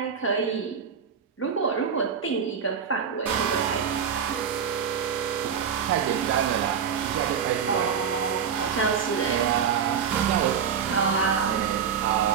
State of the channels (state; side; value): quieter; left; 7.2 dB